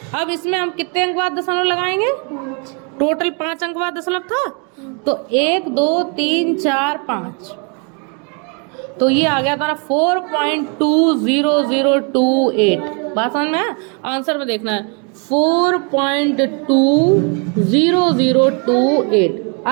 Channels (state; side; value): quieter; left; 36.3 dB